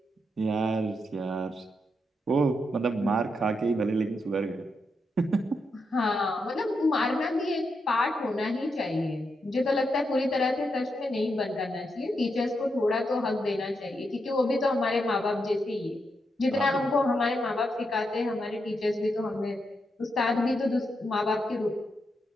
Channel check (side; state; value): both; normal; correlation 0.83